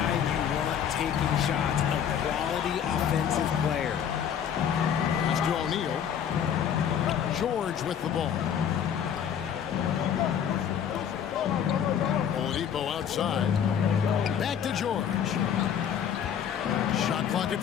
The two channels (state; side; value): quieter; right; 8.6 dB